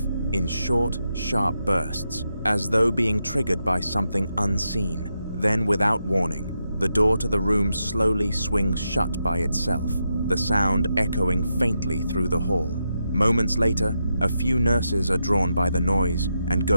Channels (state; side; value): inverted; both; correlation -0.85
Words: in short, sharp bursts, as though being triggered by something unseen. Then, without warning, the door to the room slowly swings shut by itself, the sound echoing faintly through the hall. Moments later, a few nurses are drawn by the noise and